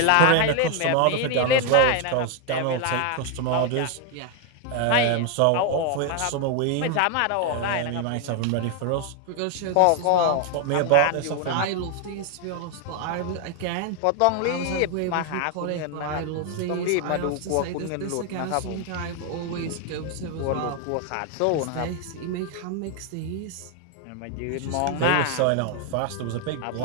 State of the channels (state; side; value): different; both; correlation 0.01